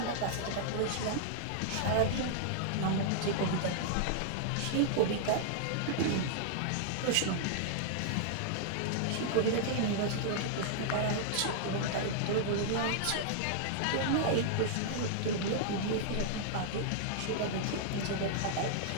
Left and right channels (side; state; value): both; different; correlation -0.01